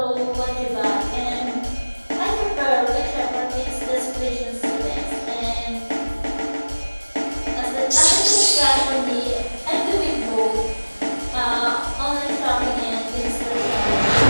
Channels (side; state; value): both; inverted; correlation -1.00